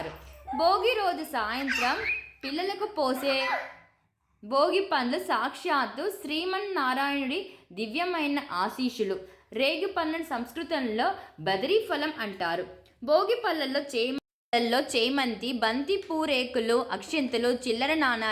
భోగి రోజు సాయంత్రం పిల్లలకు పోసే భోగి పండ్లు సాక్షాత్తు శ్రీమన్నారాయణుడి దివ్యమైన ఆశీస్సులు. రేగు పండ్లను సంస్కృతంలో బదరీ ఫలం అంటారు. భోగి పళ్ళల్లో చేమంతి, బంతి పూరేకులు, అక్షింతలు, చిల్లర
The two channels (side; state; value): both; identical; correlation 1.00